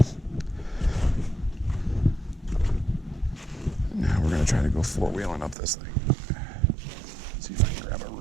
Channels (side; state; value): left; drops out; at 5.6 s